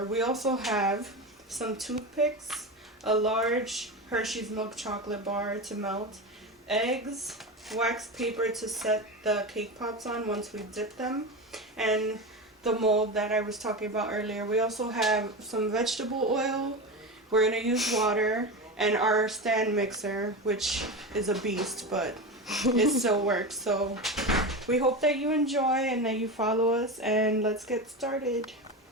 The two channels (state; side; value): normal; both; correlation 0.22